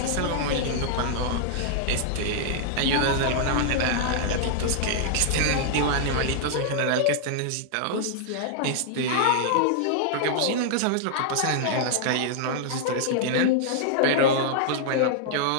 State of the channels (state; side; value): different; both; correlation -0.01